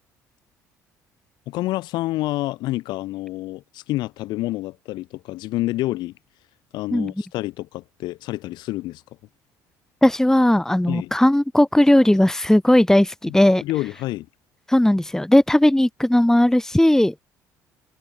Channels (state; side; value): normal; both; correlation 0.94